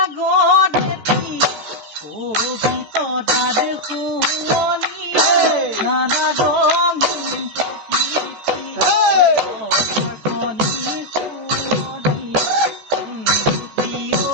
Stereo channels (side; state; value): left; late; 14 ms